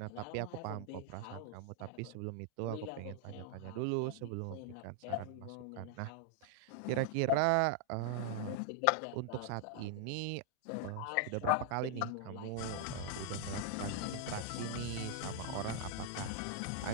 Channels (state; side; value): different; both; correlation 0.00